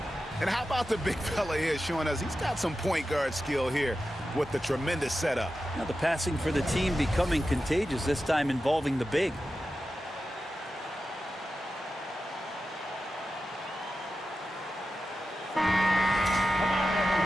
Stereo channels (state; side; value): normal; both; correlation 0.92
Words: And how about the big fella here showing us he's got some point guard skill here with the tremendous setup. Now the passing for the team becoming contagious, this time involving the big.